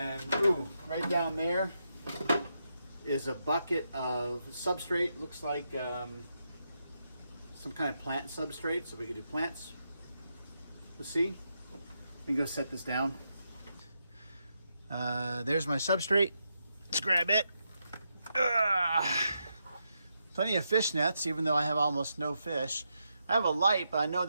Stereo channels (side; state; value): both; inverted; correlation -0.84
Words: ooh, right down there is a bucket of substrate. Looks like some kind of plant substrate, so we could do plants. Let's see. Let me go set this down. There's my substrate. Let's grab it. Plenty of fish nets, even though I have almost no fish. I have a light, but I know